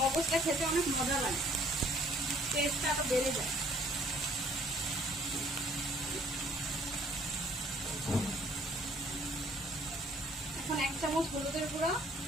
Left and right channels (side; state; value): both; normal; correlation 0.60